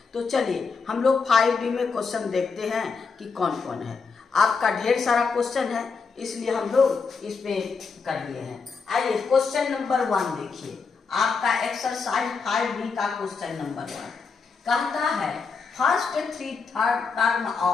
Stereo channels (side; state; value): right; quieter; 5.0 dB